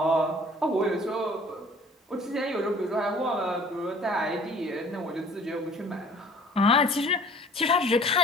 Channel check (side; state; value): both; normal; correlation 0.51